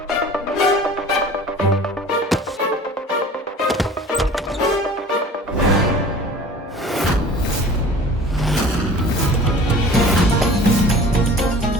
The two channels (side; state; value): both; normal; correlation 0.44